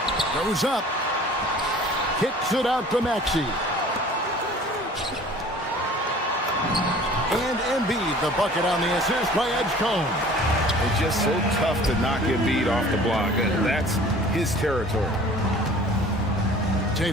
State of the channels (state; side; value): normal; both; correlation 0.47